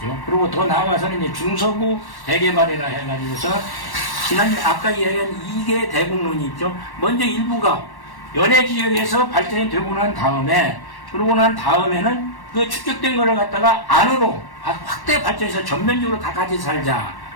그리고 더 나아가서는 이제 중서부 대개발이라 해가지고서 지난 아까 이야기한 2개 대국론이 있죠. 먼저 일부가 연해 지역에서 발전이 되고 난 다음에, 그러고 난 다음에는 그 축적된 거를 갖다가 안으로 확대 발전해서 전면적으로 다 같이 살자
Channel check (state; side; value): late; right; 1.1 ms